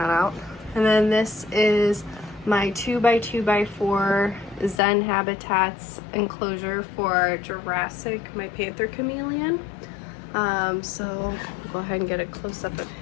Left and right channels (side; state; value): right; drops out; at 4.8 s